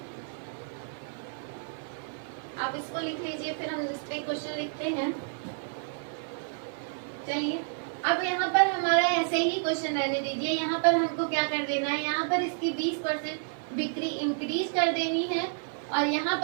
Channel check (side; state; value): left; silent; 58 dB below the other